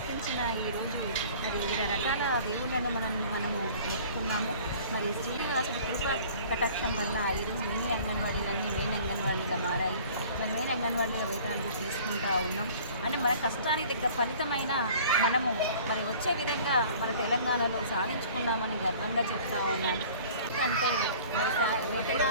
ఈరోజు మరి వివిధ రకాల దేవుళ్ళను మనము మొక్కుకున్నాము. మరి శ్రీనివాసుడు కృప కటాక్షం వల్ల ఈరోజు మినీ అంగన్వాడీలన్నీ మెయిన్ అంగన్వాడీగా మారాయి. మరి మెయిన్ అంగన్వాడీల వేతనాలు తీసుకుంటూ ఉన్నాం. అంటే మన కష్టానికి దగ్గర ఫలితమైన మనము మరి వచ్చే విధంగా మన తెలంగాణలో సాధించుకున్నామని గర్వంగా చెప్తా ఉన్నాను. అంటే మరి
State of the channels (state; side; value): inverted; both; correlation -0.48